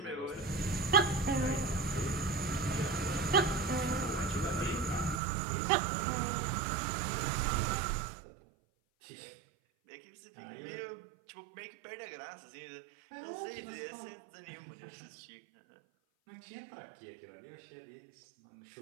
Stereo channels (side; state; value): left; drops out; at 5.2 s